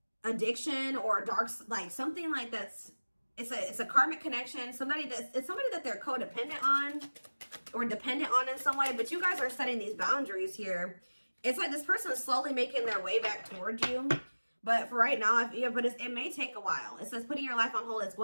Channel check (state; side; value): inverted; both; correlation -1.00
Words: addiction or dark, like something like that's, it's a karmic connection. It's somebody that they're codependent on or dependent on in some way. But you guys are setting these boundaries here. It's like this person is slowly making their way back towards you. But for right now, but it may take a while. It says putting your life on hold, it's